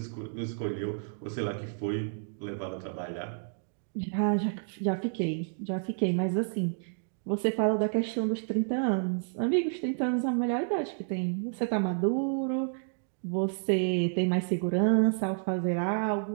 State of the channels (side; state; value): left; silent; digital silence